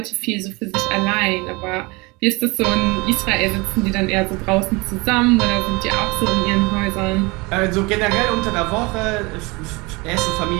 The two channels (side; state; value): left; quieter; 25.7 dB